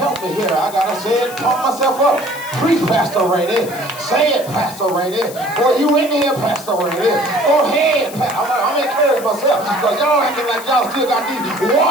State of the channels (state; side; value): noise; left; hiss, 15 dB below the sound